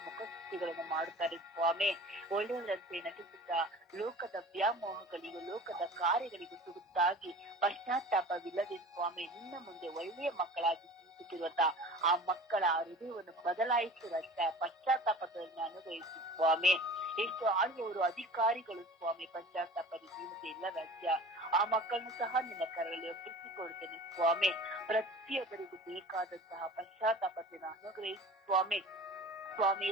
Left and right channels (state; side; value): normal; both; correlation 0.40